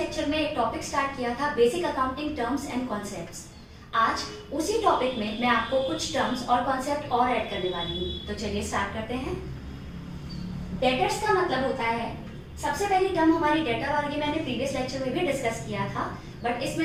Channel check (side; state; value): both; identical; correlation 1.00